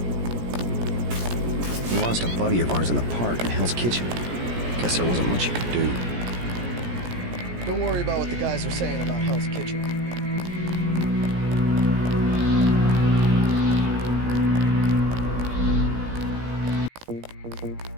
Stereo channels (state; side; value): late; left; 17 ms